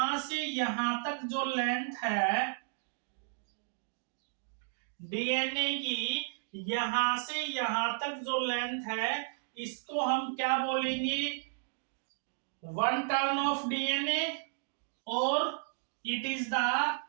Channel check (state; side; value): silent; left; digital silence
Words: से यहां तक जो लेंथ है डीएनए की, यहां से यहां तक जो लेंथ है इसको हम क्या बोलेंगे? 1 टर्न ऑफ डीएनए, और it is the